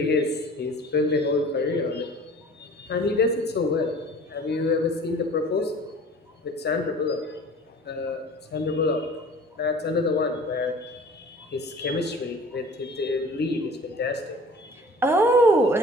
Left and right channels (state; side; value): normal; both; correlation 0.45